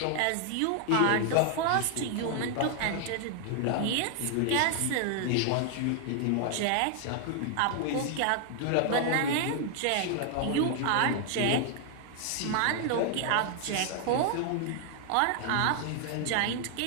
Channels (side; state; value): both; different; correlation 0.00